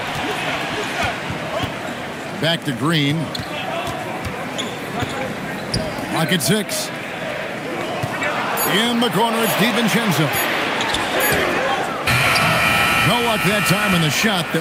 Back to Green. Clock at 6. In the corner, it's DiVincenzo. No luck that time in the shot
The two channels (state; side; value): identical; both; correlation 1.00